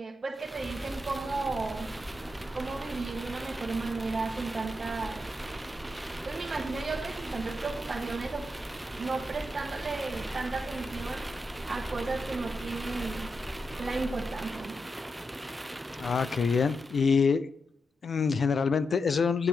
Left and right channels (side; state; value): both; normal; correlation 0.86